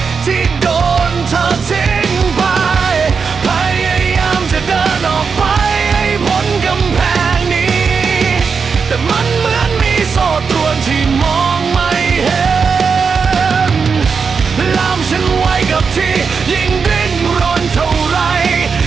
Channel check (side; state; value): left; quieter; 5.6 dB